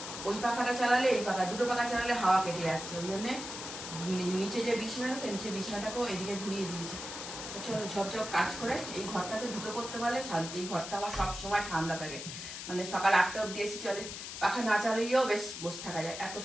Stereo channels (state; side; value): noise; left; hiss, 8 dB below the sound